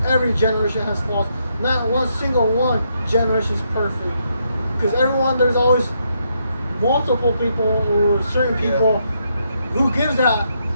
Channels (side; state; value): both; inverted; correlation -0.77